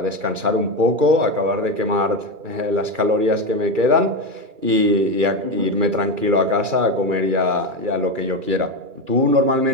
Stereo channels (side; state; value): left; late; 2.3 ms